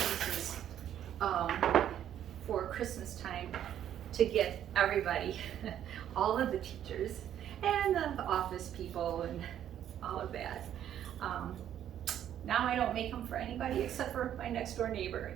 for Christmas time to get everybody, all of the teachers and the office people and all of that. Now I don't make them for anybody except for my next door neighbor.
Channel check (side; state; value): left; quieter; 10.6 dB